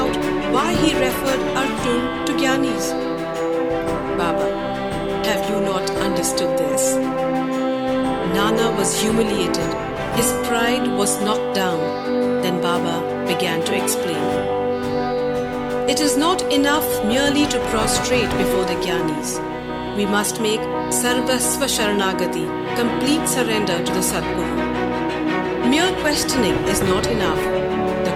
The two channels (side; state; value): both; identical; correlation 1.00